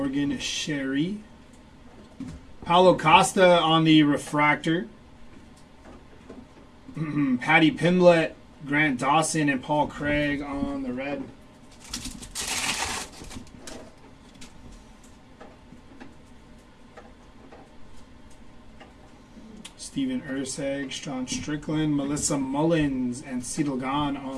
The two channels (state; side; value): identical; both; correlation 1.00